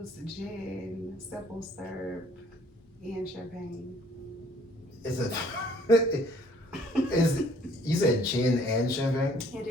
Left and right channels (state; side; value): normal; both; correlation 0.59